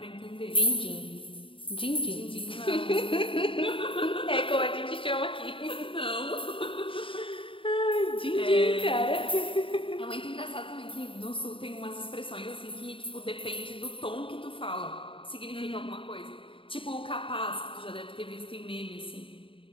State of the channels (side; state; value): right; late; 0.25 ms